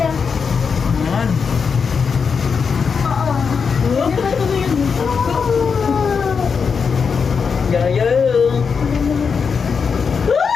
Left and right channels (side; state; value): right; quieter; 5.8 dB